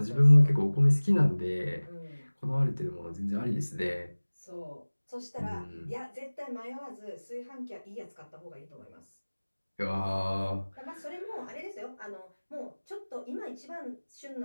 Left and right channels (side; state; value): both; inverted; correlation -1.00